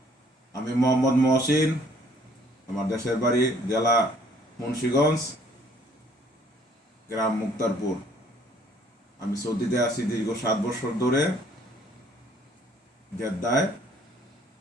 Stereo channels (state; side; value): normal; both; correlation 0.60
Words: আমি মোহাম্মদ মহসিন, আমার দেশের বাড়ি জেলা মুন্সিগঞ্জ, গ্রাম মুক্তারপুর। আমি সৌদিতে আছি দীর্ঘ 7 বছর ধরে জেদ্দায়।